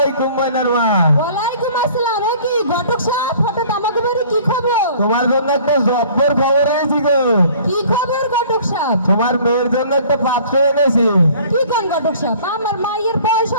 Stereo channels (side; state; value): both; inverted; correlation -0.51